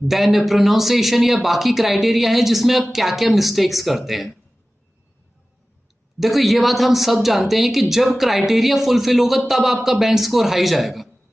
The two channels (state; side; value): normal; both; correlation 0.96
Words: देन प्रोनाउंसिएशन या बाकी क्राइटेरिया है जिसमें आप क्या क्या मिस्टेक्स करते हैं। देखो, ये बात हम सब जानते हैं कि जब क्राइटेरिया फुलफिल होगा तब आपका बैंड स्कोर हाई जाएगा।